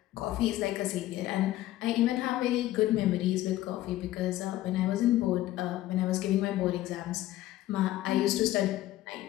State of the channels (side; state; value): right; quieter; 15.1 dB